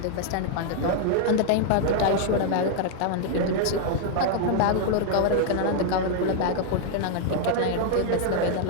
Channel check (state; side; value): different; both; correlation 0.00